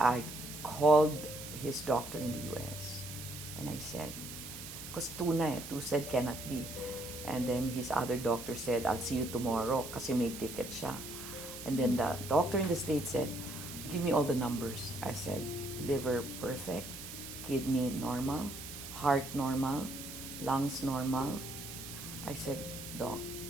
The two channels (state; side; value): noise; right; hiss, 10 dB below the sound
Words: called his doctor in the US and I said, because two said cannot be. And then his other doctor said, I'll see you tomorrow kasi may ticket siya. And then the doctor in the States said, give me all the numbers. I said, liver perfect, kidney normal, heart normal, lungs normal. I said, Doc,